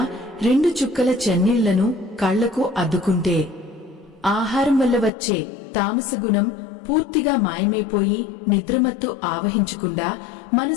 2 చుక్కల చన్నీళ్లను కళ్లకు అద్దుకుంటే ఆహారం వల్ల వచ్చే తామస గుణం పూర్తిగా మాయమైపోయి నిద్రమత్తు ఆవహించకుండా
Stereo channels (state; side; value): drops out; right; at 5.1 s